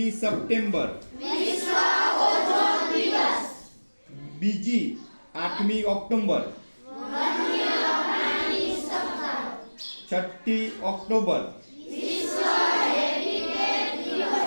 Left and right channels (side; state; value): both; inverted; correlation -1.00